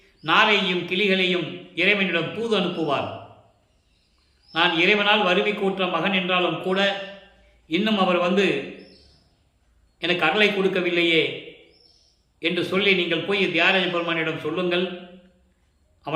நாரையும் கிளிகளையும் இறைவனிடம் தூது அனுப்புவார். நான் இறைவனால் வருவி கூற்ற மகன் என்றாலும் கூட இன்னும் அவர் வந்து எனக்கு அருளை கொடுக்கவில்லையே என்று சொல்லி நீங்கள் போய் தியாகராஜ பெருமானிடம் சொல்லுங்கள்,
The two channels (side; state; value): both; identical; correlation 1.00